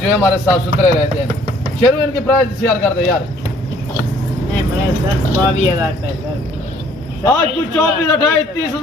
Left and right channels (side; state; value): both; normal; correlation 0.59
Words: है हमारे साफ सुथरे रहते हैं। शेरू इनकी प्राइस शेयर कर दे यार। आज कुछ 24, 28,